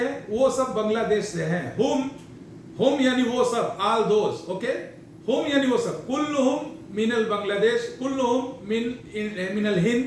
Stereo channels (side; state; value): both; identical; correlation 1.00